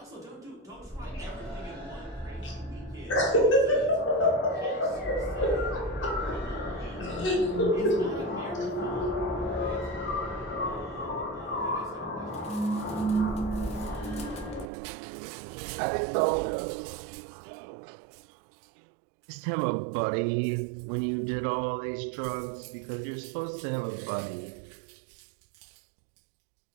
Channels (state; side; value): drops out; left; at 14.7 s